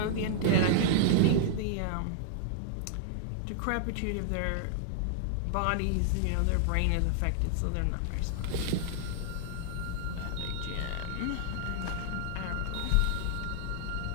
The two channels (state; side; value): different; both; correlation -0.01